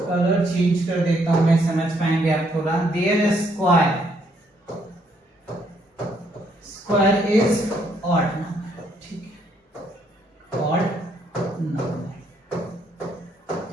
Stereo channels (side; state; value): both; normal; correlation 0.70